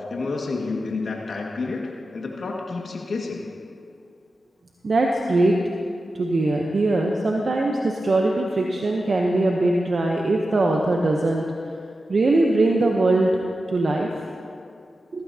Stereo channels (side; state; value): both; normal; correlation 0.92